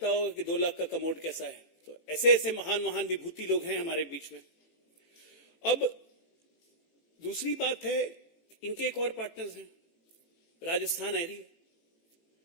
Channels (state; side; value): late; right; 18 ms